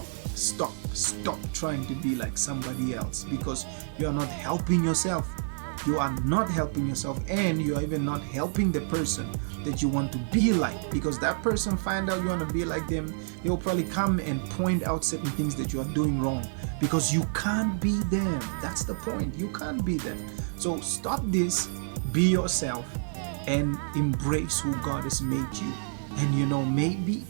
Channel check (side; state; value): left; silent; digital silence